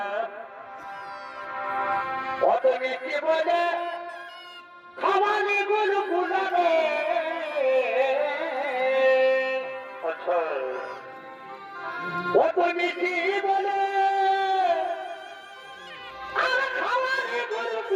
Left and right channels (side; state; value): both; identical; correlation 1.00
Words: অত মিষ্টি বলে খাওয়ানি গুলো গুলাবে অত মিষ্টি বলে আর খাওয়ানি গুলো